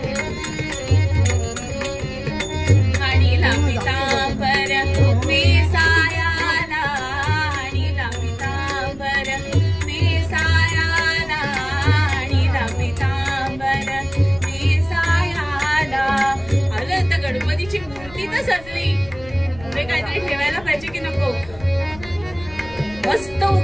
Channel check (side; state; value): left; noise; rumble, 20 dB below the sound